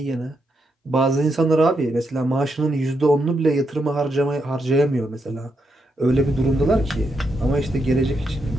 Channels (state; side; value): normal; both; correlation 0.81